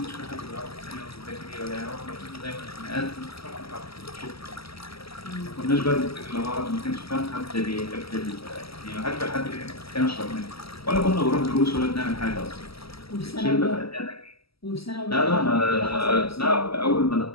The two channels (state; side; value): late; right; 0.76 ms